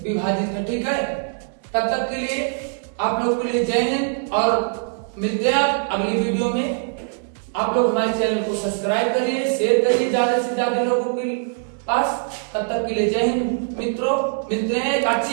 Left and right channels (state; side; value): silent; left; digital silence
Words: विभाजित है, ठीक है। तब तक के लिए आप लोग के लिए जय हिंद और मिलते हैं अगली वीडियो में। आप लोग हमारे चैनल को सब्सक्राइब करिए, शेयर करिए ज्यादा से ज्यादा लोगों के पास। तब तक के लिए जय हिंद मित्रों, मिलते हैं एक